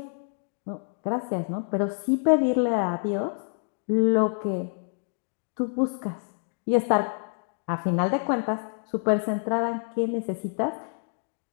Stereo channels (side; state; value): right; silent; 60 dB below the other